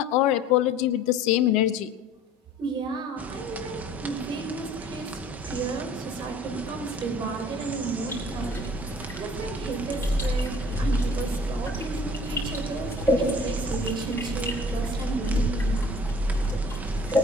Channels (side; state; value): both; normal; correlation 0.49